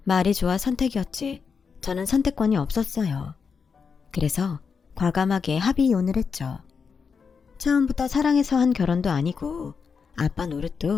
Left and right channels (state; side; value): quieter; right; 5.8 dB